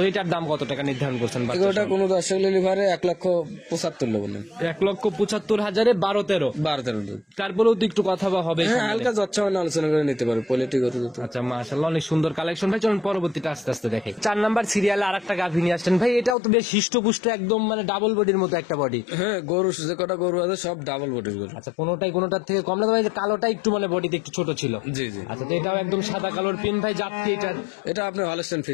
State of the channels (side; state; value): right; drops out; at 16.4 s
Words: এটার দাম কত টাকা নির্ধারণ করছেন? এগারোটা কোনো দর্শক লিভারে 1,75,00,000 বলেন। 1,75,000 12-13। 12-13 দুধ। তারপরেও তো একটু কথা বা হবে। হ্যাঁ হালকা যচ্ছা মানে আলোচনা করে নিতে পারবে কোয়ালিটি কত দুধ। আচ্ছা, মাশাআল্লাহ অনেক সুন্দর কালেকশন ভাই। চলুন পরবর্তীটা আস্তে আস্তে দেখে। 4 নাম্বার সিরিয়ালে আরেকটা গাভী নিয়ে আসছেন ভাই। এটাও তো বেশ হিষ্টপুষ্ট, একদম মানে ডাবল বডির মতো একটা বডি। হ্যাঁ গরু যে কটা গরু আছে সব ডাবল বডির গরু। আচ্ছা, কোনোটার থেকে কম না ভাই? যে কালোটা একটু মানে বডিতে একটু ছোট ছিল। জি জি। আচ্ছা, তো এটাও একদম সাদা কালোর পিন ভাই। জাত কি এটা? এটা আপনার হলস্টাইন